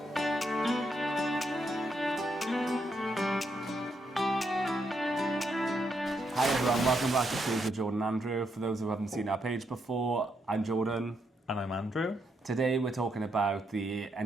Hi everyone, welcome back to Tuesday with Jordan and Andrew. For those who haven't seen our page before, I'm Jordan. And I'm Andrew. Today we're talking about the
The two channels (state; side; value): normal; both; correlation 0.79